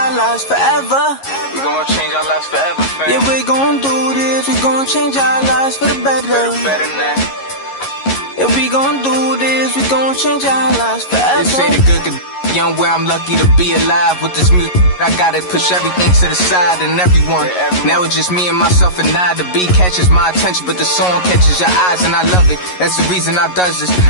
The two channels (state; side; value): late; right; 11 ms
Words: lives forever. We gon' change our lives forever, fam. Yeah, we gon' do this, we gon' change our lives for the better. For the better now. Yeah, we gon' do this, we gon' change our lives forever. They say the good could young where I'm lucky to be alive with this music. I gotta push everything to the side and everyone. Now it's just me and myself and I. The beat catches my attention, but the song catches your eyes and I love it. That's the reason I does this.